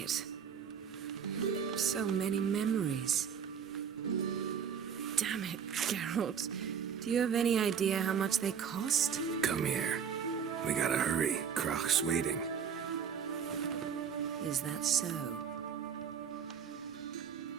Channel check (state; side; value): quieter; left; 7.4 dB